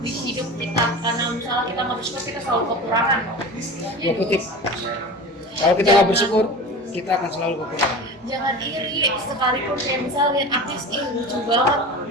di hidup kita, karena misalnya kita nggak bersyukur kita selalu kekurangan. Gue kutip, kalau kita nggak bersyukur kita akan selalu kekurangan. Jangan iri, sekalipun kayak misalnya lihat artis lucu banget,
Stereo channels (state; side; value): normal; both; correlation 0.33